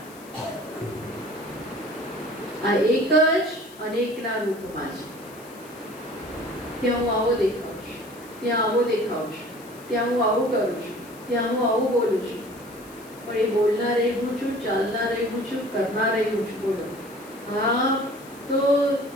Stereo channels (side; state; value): left; noise; hiss, 22 dB below the sound